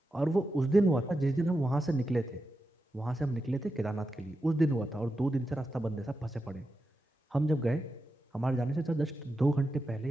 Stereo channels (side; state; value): both; normal; correlation 0.89